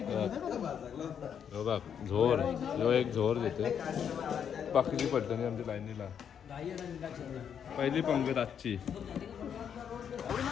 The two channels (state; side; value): quieter; right; 8.1 dB